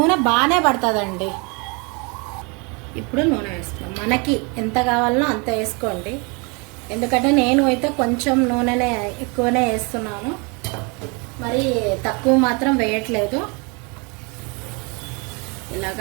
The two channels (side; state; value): left; quieter; 31.3 dB